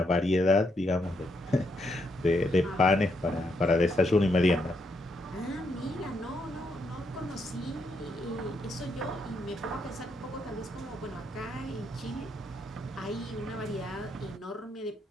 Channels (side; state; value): both; normal; correlation 0.78